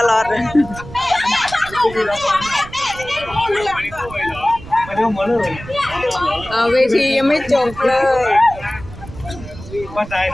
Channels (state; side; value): noise; right; rumble, 15 dB below the sound